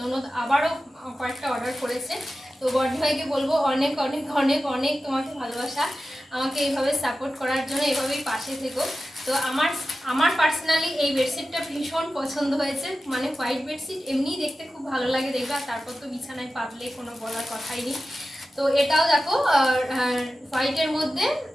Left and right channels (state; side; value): normal; both; correlation 0.94